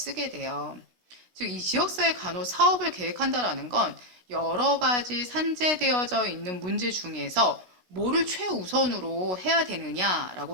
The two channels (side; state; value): left; late; 16 ms